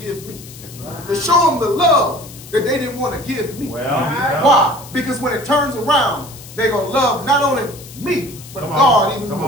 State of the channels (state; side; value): noise; left; hiss, 17 dB below the sound